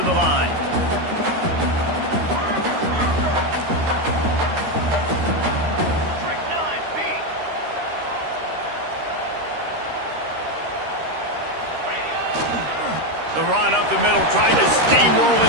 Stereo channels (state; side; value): late; left; 13 ms